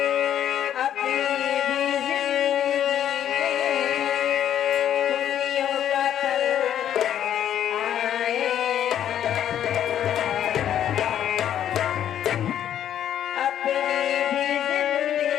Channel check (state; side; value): quieter; right; 10.4 dB